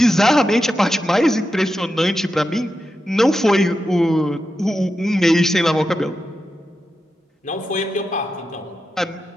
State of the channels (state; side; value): normal; both; correlation 0.89